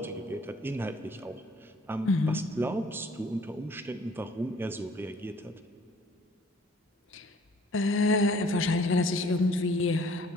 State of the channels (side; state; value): both; normal; correlation 0.57